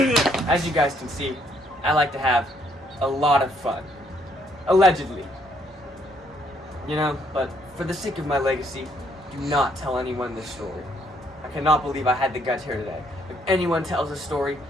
As you guys can see, I like to have a lot of fun. Allegedly. You know, but for the sake of my legacy, do not tell anyone this story. I cannot believe I had the guts here today. If anyone tells this story,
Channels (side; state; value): both; normal; correlation 0.69